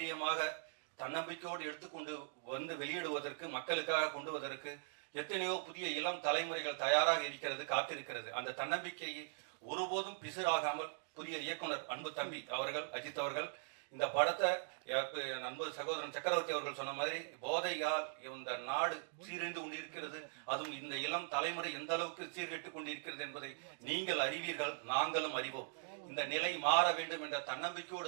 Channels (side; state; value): left; silent; digital silence